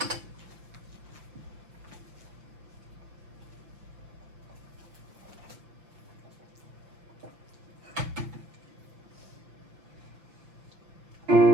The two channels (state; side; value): late; left; 5.9 ms